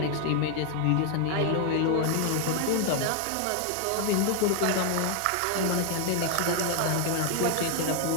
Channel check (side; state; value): both; different; correlation 0.00